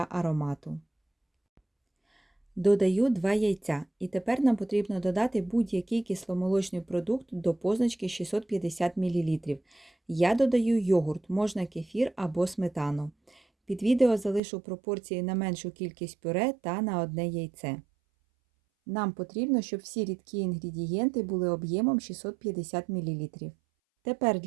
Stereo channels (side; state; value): left; drops out; at 14.4 s